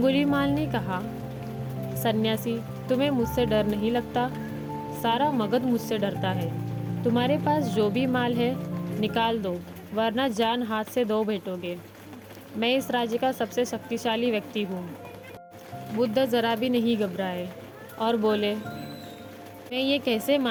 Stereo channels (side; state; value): both; identical; correlation 1.00